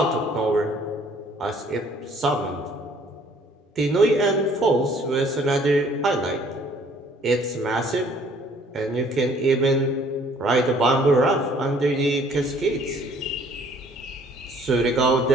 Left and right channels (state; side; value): normal; both; correlation 0.58